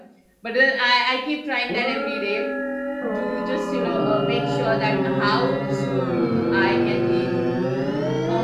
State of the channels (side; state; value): both; identical; correlation 1.00